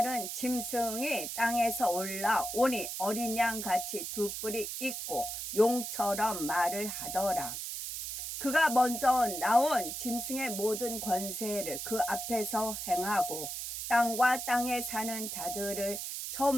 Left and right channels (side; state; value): right; noise; hiss, 5 dB below the sound